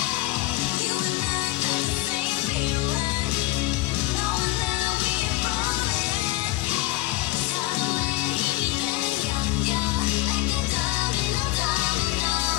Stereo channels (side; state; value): right; quieter; 18.4 dB